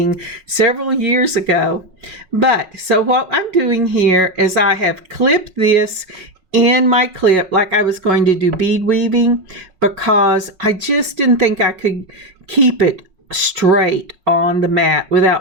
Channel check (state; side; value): late; left; 5.4 ms